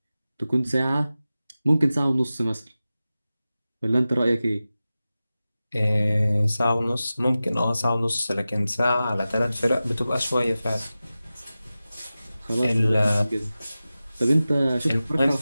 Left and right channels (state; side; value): inverted; both; correlation -0.95